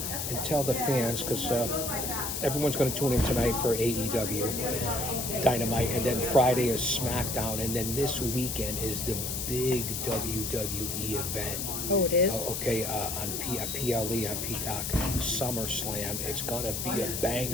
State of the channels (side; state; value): left; noise; hiss, 3 dB below the sound